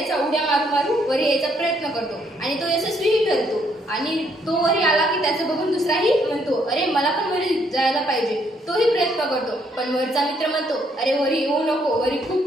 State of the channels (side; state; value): both; normal; correlation 0.70